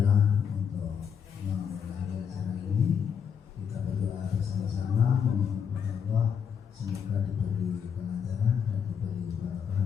untuk mengakhiri acara ini kita berdoa bersama-sama memohon Allah semoga diberi kelancaran dan diberi barokah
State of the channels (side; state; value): right; quieter; 7.4 dB